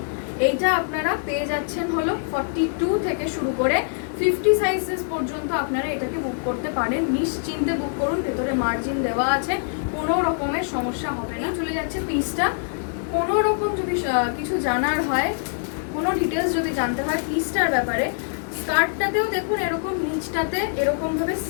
এইটা আপনারা পেয়ে যাচ্ছেন হলো 42 থেকে শুরু করে 50 সাইজেস পর্যন্ত আপনারা এটাকে বুক করতে পারেন। নিশ্চিন্তে বুক করুন, ভেতরে মার্জিন দেওয়া আছে, কোনো রকমের সমস্যা হবে না। চলে যাচ্ছে পিসটা। কোনো রকম যদি কিছু জানার হয়, কোনো ডিটেলস যদি জানতে হয় পিসটার ব্যাপারে, স্কার্টটাতেও দেখুন এরকম নিচটাতে এরকমভাবে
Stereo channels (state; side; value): silent; right; digital silence